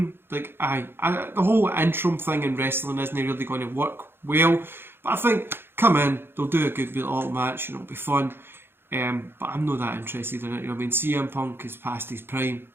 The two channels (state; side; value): late; left; 0.11 ms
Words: Like, the whole interim thing in wrestling isn't really going to work well. But I think, come in, they'll do a good little match and it'll be fun. But I'm not that interested in it. You know what I mean? CM Punk is past his prime.